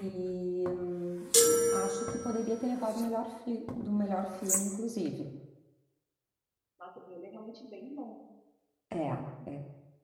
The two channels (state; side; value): identical; both; correlation 1.00